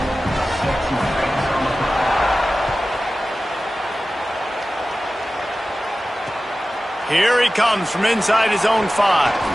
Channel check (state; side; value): normal; both; correlation 0.96